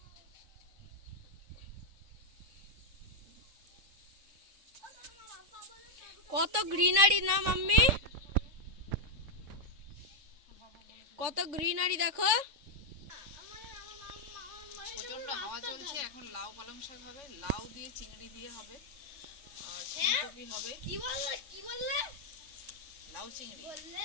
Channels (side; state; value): left; late; 3.6 ms